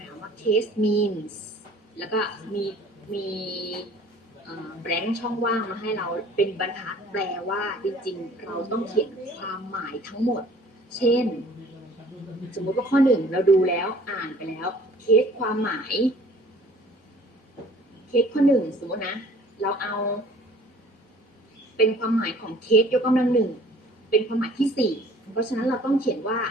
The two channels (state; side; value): normal; both; correlation 0.52